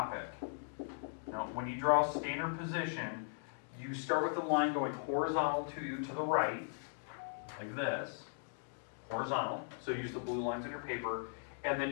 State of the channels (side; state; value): right; silent; digital silence